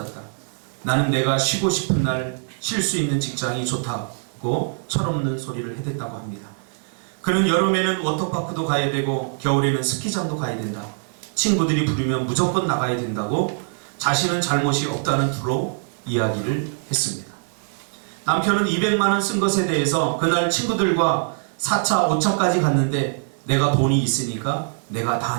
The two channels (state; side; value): silent; left; digital silence